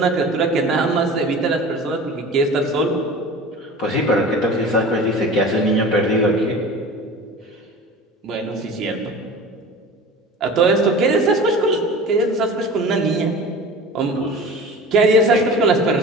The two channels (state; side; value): normal; both; correlation 0.37